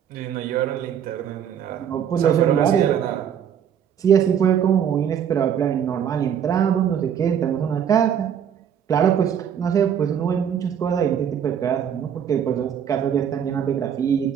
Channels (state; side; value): quieter; left; 8.7 dB